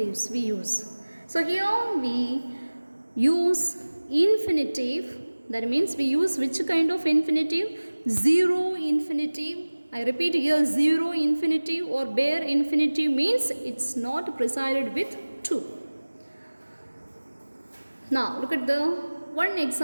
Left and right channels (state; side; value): inverted; both; correlation -1.00